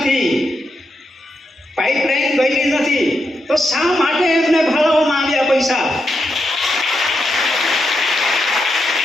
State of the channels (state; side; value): normal; both; correlation 0.84